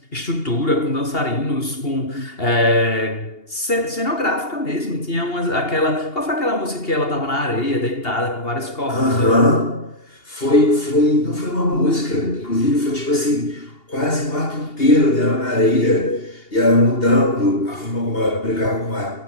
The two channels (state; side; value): late; right; 2.8 ms